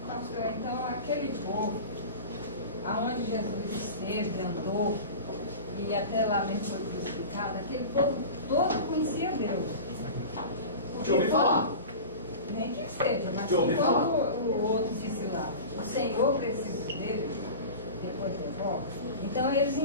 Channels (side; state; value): both; inverted; correlation -0.33